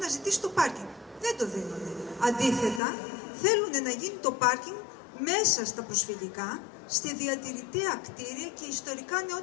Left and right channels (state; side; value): drops out; right; at 2.8 s